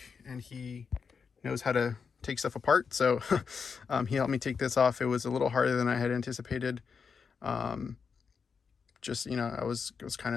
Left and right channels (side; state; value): right; quieter; 5.8 dB